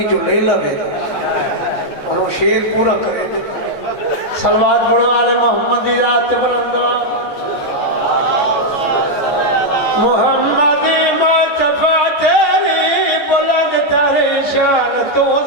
جو لے لگے اور وہ شیر پورا کرے دے صلوات بڑھو آل محمدی ذات بلندہ محمدی مصطفیٰ تیری بلند تر شان تو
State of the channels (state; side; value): late; right; 14 ms